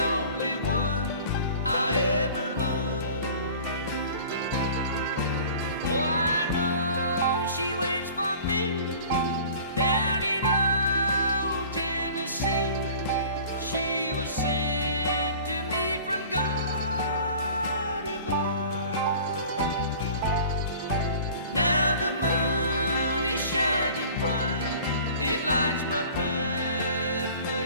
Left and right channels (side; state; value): both; inverted; correlation -0.45